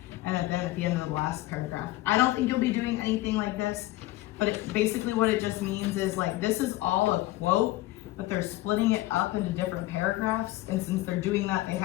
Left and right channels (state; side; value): quieter; right; 17.4 dB